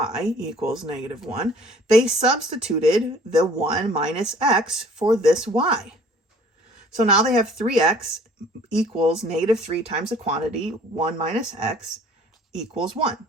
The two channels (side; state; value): both; normal; correlation 0.53